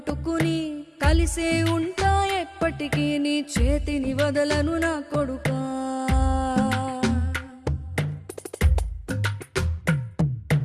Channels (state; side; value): identical; both; correlation 1.00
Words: కలిసే ఉంటా ఎప్పటికీ నీ చేతిని వదలను నా కొడుకా.